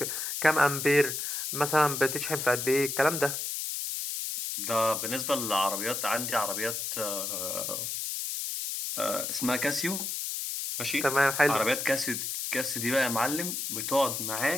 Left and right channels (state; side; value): noise; left; hiss, 3 dB below the sound